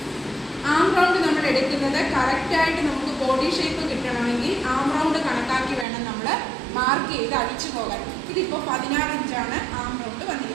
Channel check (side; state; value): left; drops out; at 5.9 s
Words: ആം റൗണ്ട് നമ്മൾ എടുക്കുന്നത് കറക്റ്റായിട്ട് നമുക്ക് ബോഡി ഷേപ്പ് കിട്ടണമെങ്കിൽ ആം റൗണ്ട് കണക്കാക്കി വേണം നമ്മൾ മാർക്ക് ചെയ്ത് അടിച്ചു പോകാൻ. ഇതിപ്പോൾ 16 ഇഞ്ചാണ് ആം റൗണ്ട്